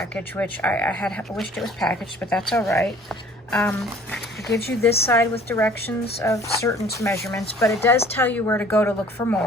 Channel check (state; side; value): normal; both; correlation 0.52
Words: which I had wished it was packaged, but that's all right. It gives you this side with directions of certain measurements, but it does tell you where to go to look for